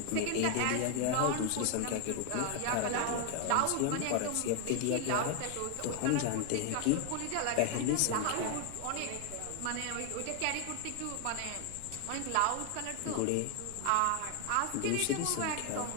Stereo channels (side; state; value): both; different; correlation 0.01